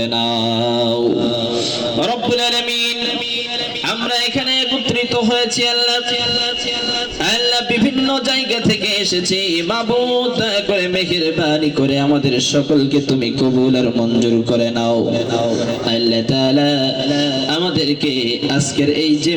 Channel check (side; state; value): both; identical; correlation 1.00